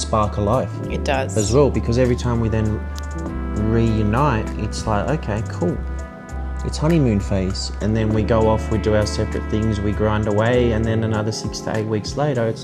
alive. It does. As well, because every time we then reunite, it's like, okay, cool. It's honeymoon phase. And then we go off, we do our separate things, we grind away, and then another 6 to 8 weeks later,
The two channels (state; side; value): identical; both; correlation 1.00